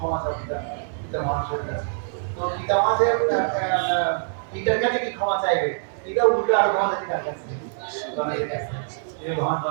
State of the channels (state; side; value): silent; left; digital silence